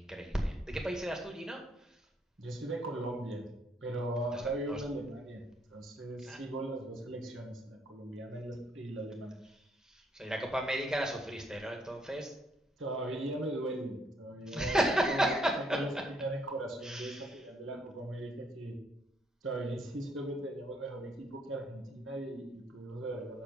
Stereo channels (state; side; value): normal; both; correlation 0.70